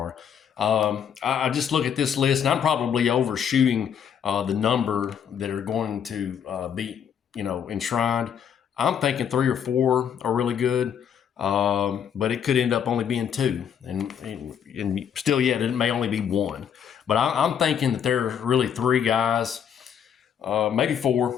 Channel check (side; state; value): right; quieter; 8.2 dB